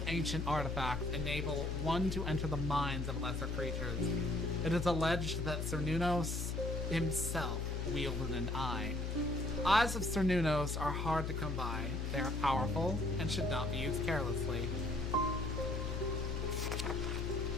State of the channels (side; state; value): left; noise; hum, 1 dB below the sound